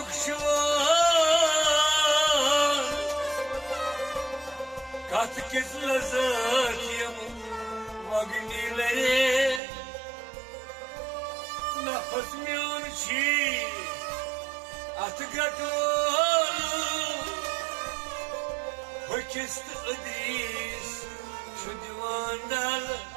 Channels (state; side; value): drops out; left; at 9.6 s